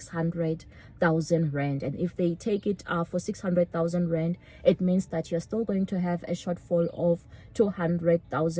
rand. And if they take it for 600,000 rand, it means that you're still going to have a shortfall of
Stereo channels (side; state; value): both; identical; correlation 1.00